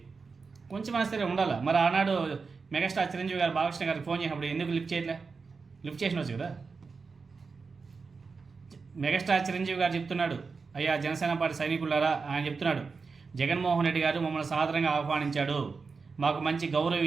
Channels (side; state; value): left; quieter; 4.8 dB